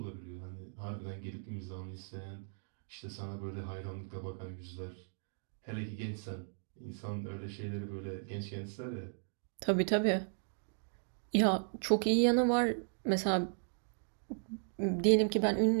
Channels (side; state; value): left; silent; digital silence